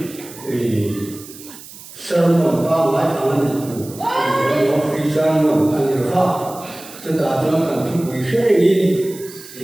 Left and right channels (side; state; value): right; noise; hiss, 17 dB below the sound